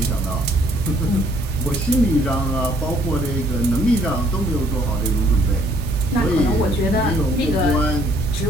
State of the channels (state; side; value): normal; both; correlation 0.64